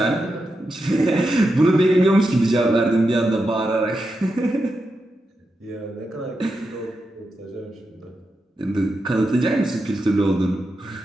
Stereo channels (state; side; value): normal; both; correlation 0.87